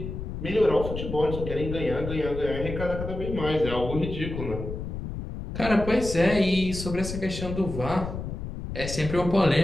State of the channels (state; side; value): noise; left; rumble, 7 dB below the sound